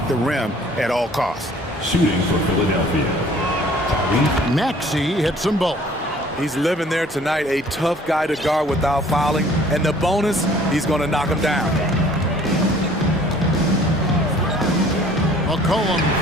the rim at all costs. Shooting for Philadelphia. Maxey hits them both. He's living there tonight, a tough guy to guard without fouling. And the bonus, he's going to knock him down. McCollum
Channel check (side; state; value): both; normal; correlation 0.54